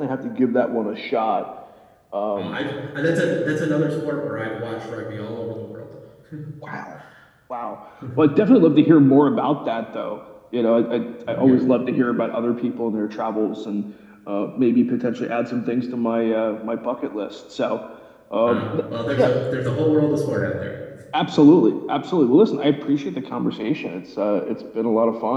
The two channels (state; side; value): identical; both; correlation 1.00